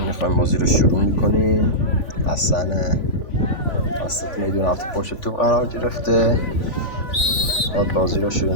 میخوایم بازی رو شروع میکنیم. حسن وسط میدون هفته پشت توپ قرار گرفته، خود بازی رو شروع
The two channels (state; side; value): late; right; 3.5 ms